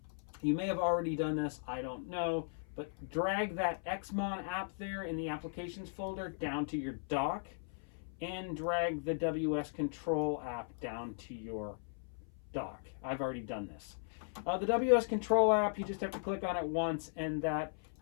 You may have already done this, I don't know, but drag that Xmon app there in the applications folder down to your dock and drag the WS Control app down to your dock. I've already done this. The WS Control app, you just have to click on it once, and that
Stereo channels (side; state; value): right; silent; 53 dB below the other